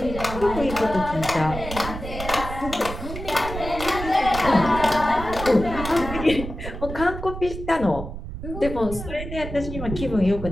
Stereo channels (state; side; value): noise; right; rumble, 8 dB below the sound